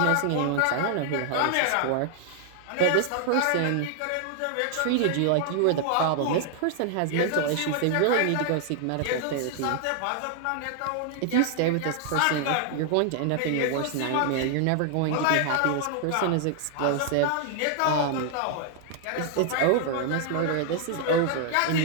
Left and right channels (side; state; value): both; different; correlation 0.00